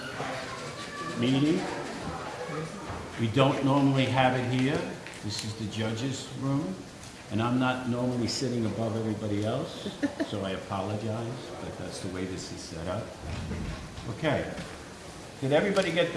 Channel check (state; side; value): identical; both; correlation 1.00